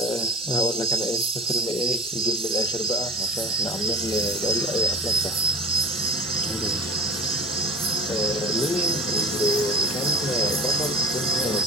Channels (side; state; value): both; normal; correlation 0.35